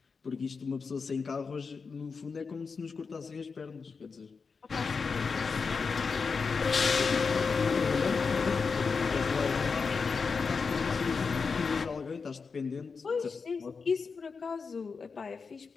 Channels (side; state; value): right; quieter; 5.1 dB